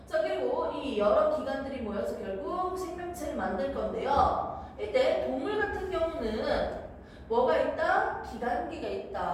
자 그리고 이 여러 기관들이 모여서 결국 생명체를 만들 건데요. 이때 동물 같은 경우는 뭐가 있다? 기관계가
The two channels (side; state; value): both; identical; correlation 1.00